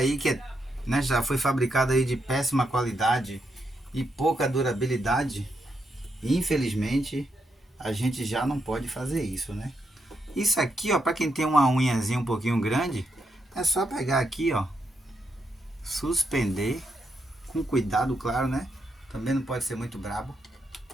que é, né, já foi fabricado aí de péssima qualidade e pouca durabilidade, infelizmente a gente já não pode fazer isso, né? Isso aqui, ó, para quem tem uma unhazinha um pouquinho grande, é só pegar aqui, ó, suspender com cuidado, claro, né? Também não pode ser muito brabo.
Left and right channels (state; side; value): normal; both; correlation 0.81